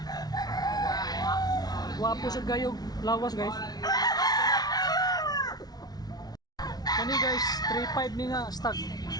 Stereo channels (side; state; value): right; late; 0.19 ms